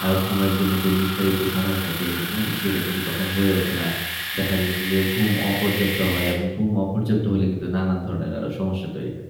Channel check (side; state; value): both; identical; correlation 1.00